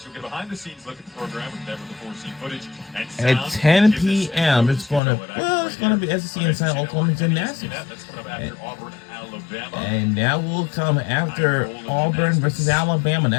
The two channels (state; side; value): drops out; right; at 5.0 s